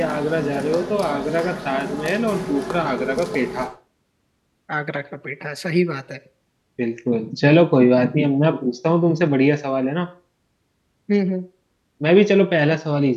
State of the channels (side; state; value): both; identical; correlation 1.00